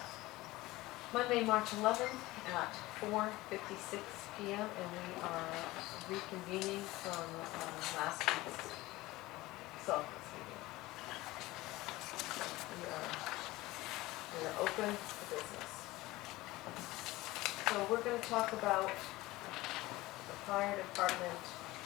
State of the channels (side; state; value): right; quieter; 19.1 dB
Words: Monday, March 11th at 4:56 p.m. and we are reconvening from last week's Selectmen's meeting. We are open for business. So we're going to talk about the fire department